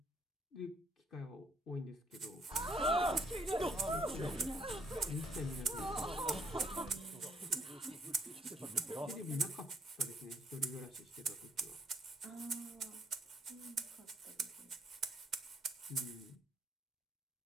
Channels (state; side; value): normal; both; correlation 0.67